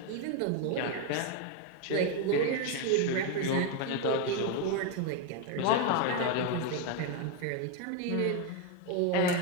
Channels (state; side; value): different; both; correlation 0.01